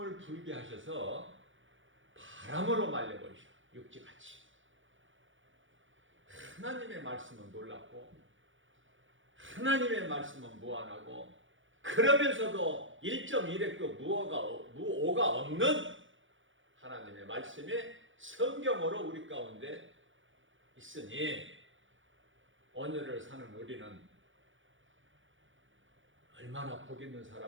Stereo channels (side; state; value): left; late; 0.56 ms